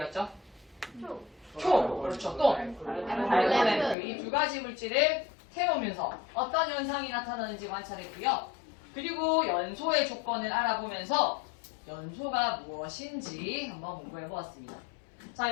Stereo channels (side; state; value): right; drops out; at 4.0 s